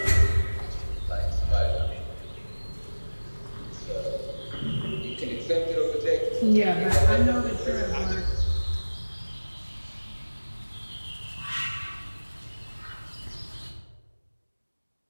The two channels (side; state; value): both; inverted; correlation -1.00